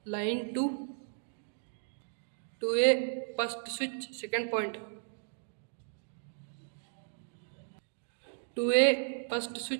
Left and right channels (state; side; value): silent; left; digital silence